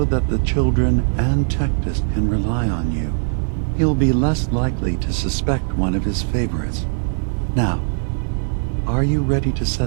that the children and Tectus can rely on you. He'll be less likely to suspect one of his favorites. Now, are you ready to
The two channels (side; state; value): left; silent; 62 dB below the other